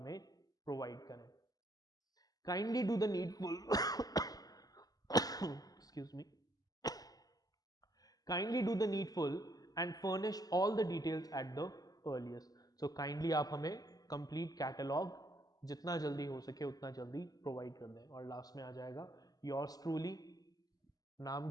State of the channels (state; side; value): late; right; 0.18 ms